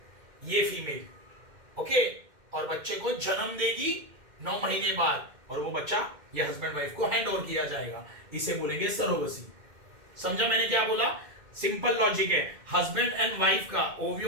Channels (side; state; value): left; late; 2.1 ms